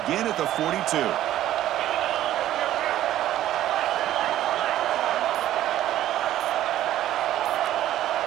at the 42.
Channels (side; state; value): left; quieter; 13.0 dB